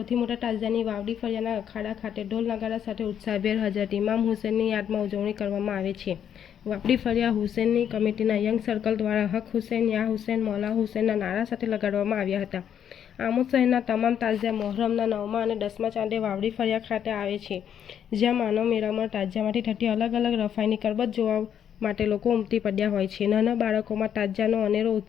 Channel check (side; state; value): right; quieter; 9.0 dB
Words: મોટા તાજિયાની વાવડી ફળિયાના અખાડા ખાતે ઢોલ નગારા સાથે ઉત્સાહભેર હજરત ઇમામ હુસેનની યાદમાં ઉજવણી કરવામાં આવે છે। વાવડી ફળિયા હુસેનની કમિટીના યંગ સર્કલ દ્વારા હક હુસેન યા હુસેન મૌલા હુસેનના નારા સાથે લગાડવામાં આવ્યા હતા। આમોદ શહેરના તમામ તાજિયા મોહરમના 9મા અને 10મા ચાંદે વાવડી ફળિયા ખાતે આવે છે, જ્યાં માનવ મેળામાં તાજિયામાંથી થતી અલગ અલગ રફાઈની કરબત જોવા માટે લોકો ઉમટી પડ્યા હોય છે। નાના બાળકોમાં તાજિયાનો અનેરો